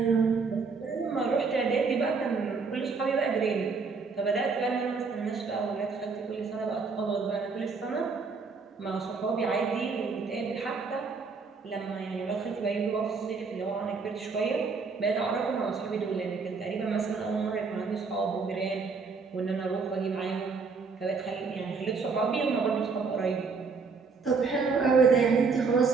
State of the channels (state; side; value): quieter; left; 4.8 dB